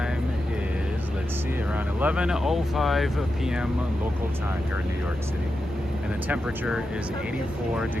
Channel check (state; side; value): normal; both; correlation 0.89